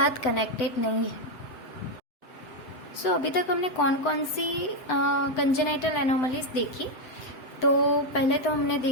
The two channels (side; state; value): right; late; 7.9 ms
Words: कनेक्टेड नहीं है। सो अभी तक हमने कौन कौन सी कंजेनाइटल एनोमलीज देखी, तो पहले तो हमने